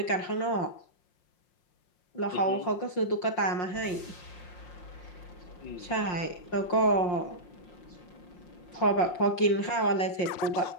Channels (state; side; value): late; right; 5.6 ms